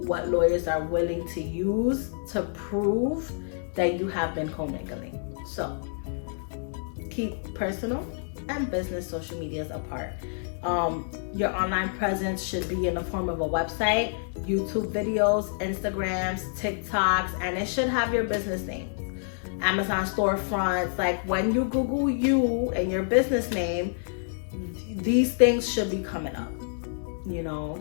what lawyers are willing to use to prove that you have been commingling. So keep personal and business social medias apart. Your online presence should be in the form of a website, YouTube videos, Instagrams, TikToks, and it should have your business name. Amazon storefronts, like when you Google you and your business name, these things should be coming up,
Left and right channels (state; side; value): silent; right; digital silence